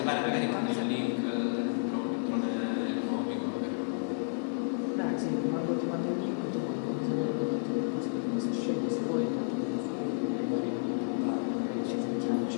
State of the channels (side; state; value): right; silent; digital silence